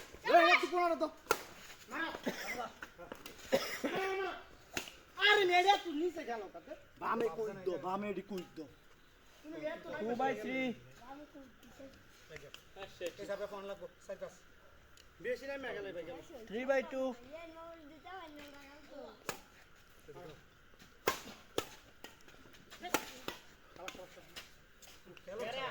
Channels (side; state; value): both; identical; correlation 1.00